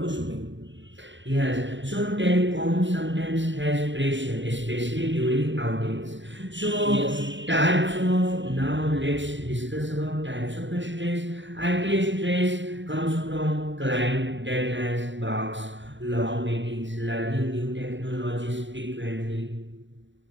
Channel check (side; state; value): left; late; 0.54 ms